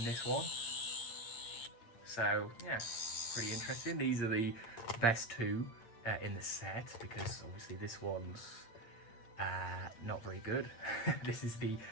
this one. So yeah, pretty interesting. These are the best two in the set, because obviously this one's not very good. This is the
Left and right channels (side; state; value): right; late; 8.7 ms